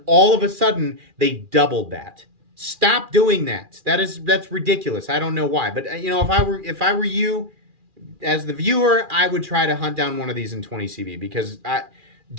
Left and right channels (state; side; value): late; left; 2.4 ms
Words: all of a sudden they doubled that. Stop doing that. That's ridiculous. I don't know why. But you know, if I were you, as the viewer, I would try to hunt down one of these in 20 CV because